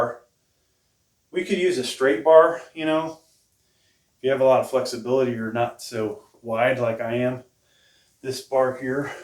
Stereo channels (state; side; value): identical; both; correlation 1.00